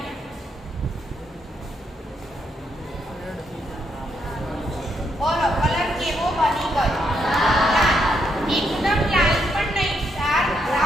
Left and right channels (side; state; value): both; normal; correlation 0.77